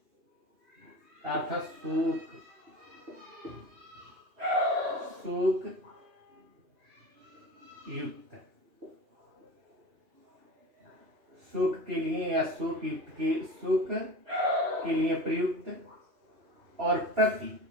का अर्थ सुख, सुख युक्त, सुख के लिए या सुख युक्त के सुख के लिए प्रयुक्त। और प्रति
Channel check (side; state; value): left; late; 2.8 ms